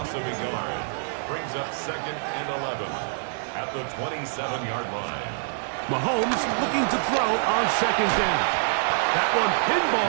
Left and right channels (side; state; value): left; silent; digital silence